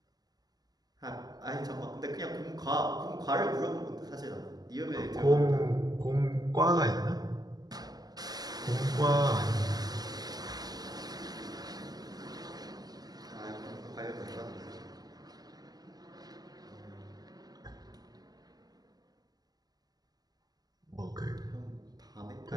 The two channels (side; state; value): left; late; 0.19 ms